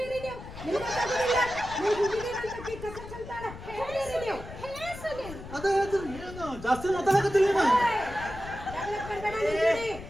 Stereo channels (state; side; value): noise; left; rumble, 13 dB below the sound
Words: ನೀವು ಅದ ಹೇಳ್ತೀನಿ. ಏನು ಜಾಸ್ತಿ ಮಾತಾಡಕತ್ತೀನಿ?